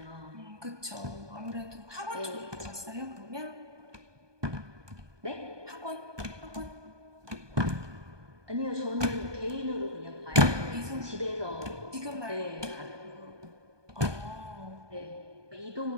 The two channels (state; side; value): late; left; 1.2 ms